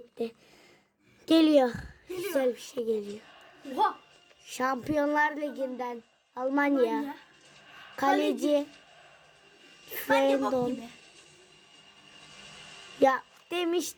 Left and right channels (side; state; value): both; identical; correlation 1.00